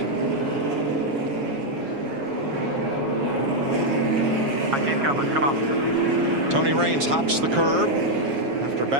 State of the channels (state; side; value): late; left; 7.3 ms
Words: Come on. Tony Raines hops the curb after